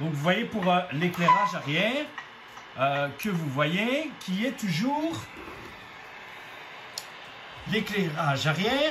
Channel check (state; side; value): identical; both; correlation 1.00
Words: vous voyez pour l'éclairage arrière que vous voyez qui est toujours l'éclairage